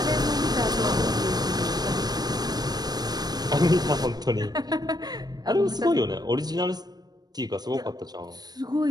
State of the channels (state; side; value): late; left; 0.19 ms